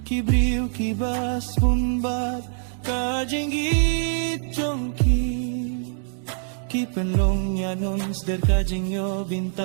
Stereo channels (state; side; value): silent; left; digital silence